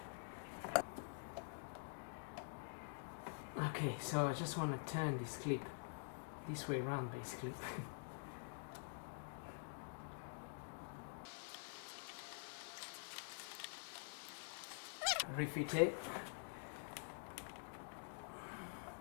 okay, so I just want to turn this clip this way around basically. Refit it.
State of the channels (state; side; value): silent; right; digital silence